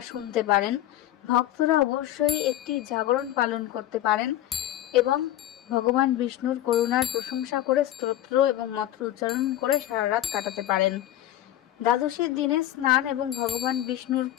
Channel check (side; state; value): right; quieter; 13.2 dB